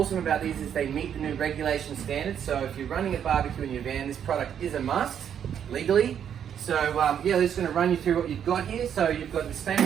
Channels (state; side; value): quieter; left; 8.8 dB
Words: about these is they meet the new regulation standards, so if you're running a barbecue in your van, this product is a must, legally. So yeah, we're just going to run you through what you've got here. So you've got the